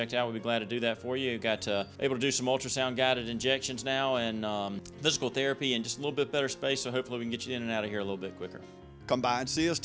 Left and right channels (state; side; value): identical; both; correlation 1.00